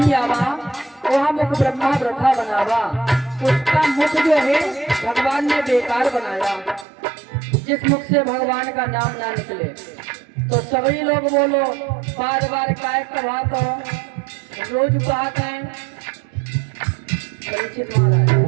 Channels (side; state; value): left; drops out; at 6.9 s